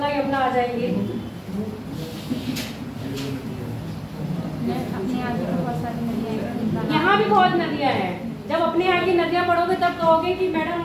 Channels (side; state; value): both; identical; correlation 1.00